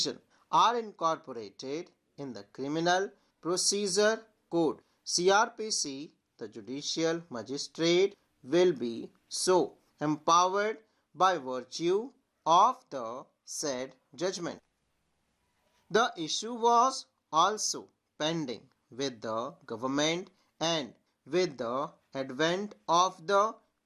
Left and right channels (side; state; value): both; identical; correlation 1.00